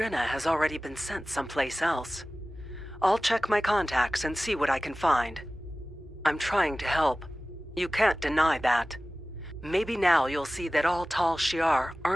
has already been sent someplace else. I'll check my contacts and see what I can find. I'm trying to help. You can't deny that. Maybe now you'll see that all Tal Shiar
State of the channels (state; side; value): normal; both; correlation 0.97